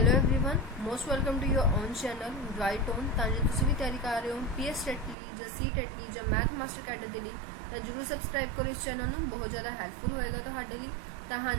everyone, most welcome to your own channel right on. ਤਾਂ ਜੇ ਤੁਸੀਂ ਵੀ ਤਿਆਰੀ ਕਰ ਰਹੇ ਹੋ ਪੀਐਸ ਟੈਟ ਲਈ ਜਾਂ ਸੀ ਟੈਟ ਲਈ ਜਾਂ ਮੈਥ ਮਾਸਟਰ ਕੈਡਰ ਦੇ ਲਈ ਤਾਂ ਜਰੂਰ ਸਬਸਕ੍ਰਾਈਬ ਕਰੋ ਇਸ ਚੈਨਲ ਨੂੰ, ਬਹੁਤ ਜ਼ਿਆਦਾ ਹੈਲਪਫੁਲ ਹੋਏਗਾ ਤੁਹਾਡੇ ਲਈ। ਤਾਂ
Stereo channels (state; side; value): drops out; left; at 5.2 s